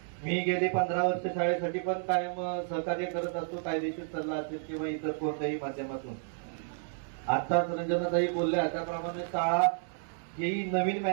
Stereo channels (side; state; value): left; silent; digital silence